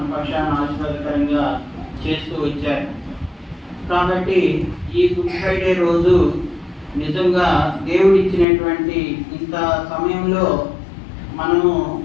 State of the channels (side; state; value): right; drops out; at 8.5 s